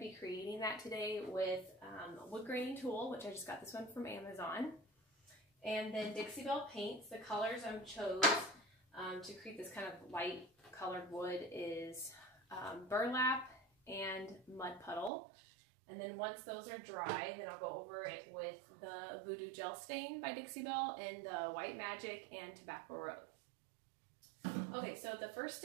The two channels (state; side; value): drops out; left; at 15.1 s